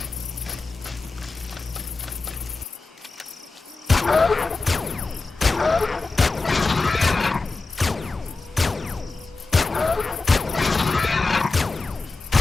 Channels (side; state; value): right; quieter; 3.7 dB